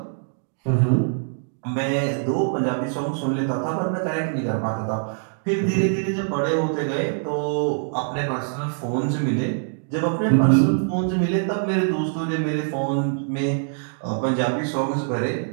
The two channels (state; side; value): silent; left; digital silence